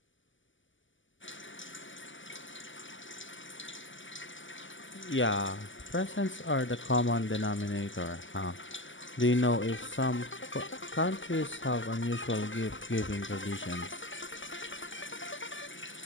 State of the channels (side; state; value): right; late; 0.56 ms